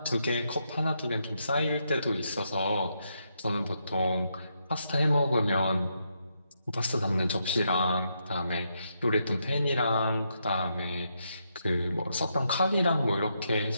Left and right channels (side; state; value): both; inverted; correlation -0.80